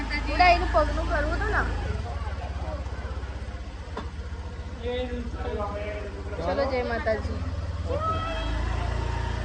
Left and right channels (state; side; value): identical; both; correlation 1.00